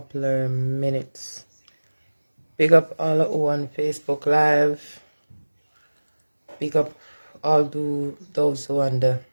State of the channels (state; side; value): inverted; both; correlation -1.00